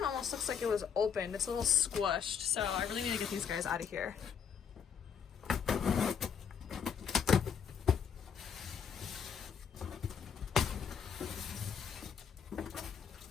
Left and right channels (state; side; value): quieter; right; 7.3 dB